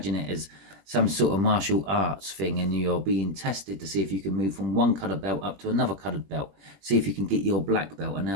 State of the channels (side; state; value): left; late; 21 ms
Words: it as some sort of martial arts thing, and you're being tested to see if you can move from one coloured belt up to another coloured belt. See if you can get your black belt, and now